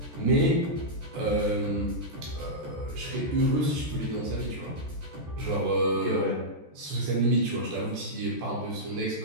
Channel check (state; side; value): late; left; 14 ms